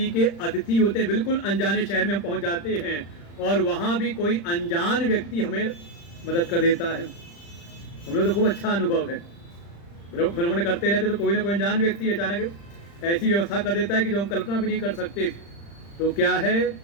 के अतिथि होते हैं। बिल्कुल अनजाने शहर में हम पहुंच जाते हैं और वहां भी कोई अनजान व्यक्ति हमें मदद कर देता है। हम लोग तो खूब अच्छा अनुभव है, भ्रमण करते रहते तो कोई ना कोई अनजान व्यक्ति अचानक ऐसी व्यवस्था कर देता है कि जो हम कल्पना भी नहीं कर सकते। तो क्या है,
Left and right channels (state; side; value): late; right; 35 ms